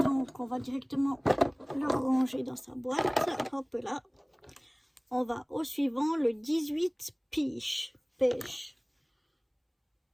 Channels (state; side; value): identical; both; correlation 1.00